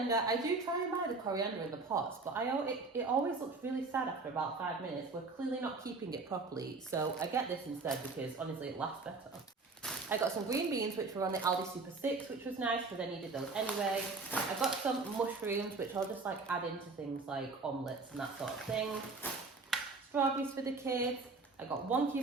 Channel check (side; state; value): left; quieter; 3.9 dB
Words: I do try and buy the coriander in the pots, but it always looks really sad after about 5 minutes. We're clearly not keeping it properly, so I get this instead because honestly it lasts better. I got some green beans, which were on the Aldi Super 6, which was nice because I needed those anyway. I got some mushrooms, which I'll just like add into things like omelettes and that sort of thing. Strawberries for the kids. I got